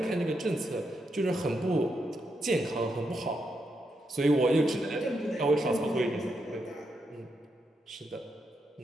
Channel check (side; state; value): both; normal; correlation 0.82